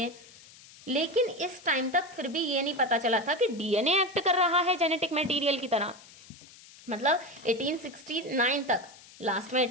लेकिन इस टाइम तक फिर भी ये नहीं पता चला था कि डीएनए एक्ट कर रहा है जेनेटिक मटेरियल की तरह। मतलब 1869 तक, लास्ट में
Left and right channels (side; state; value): left; noise; hiss, 21 dB below the sound